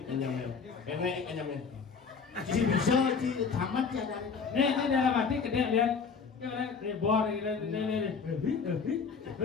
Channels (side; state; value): right; quieter; 5.6 dB